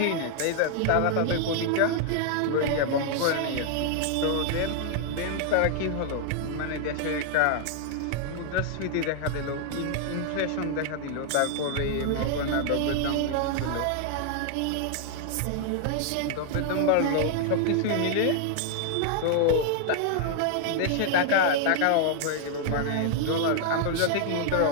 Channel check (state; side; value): different; both; correlation 0.00